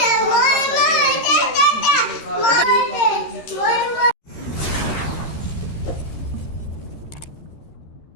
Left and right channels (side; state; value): right; late; 13 ms